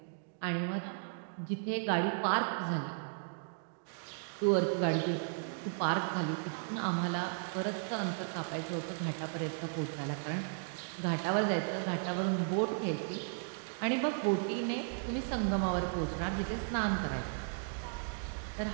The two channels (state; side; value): silent; left; digital silence